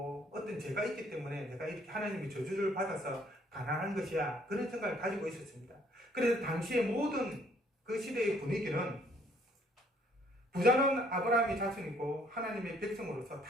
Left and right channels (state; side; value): normal; both; correlation 0.63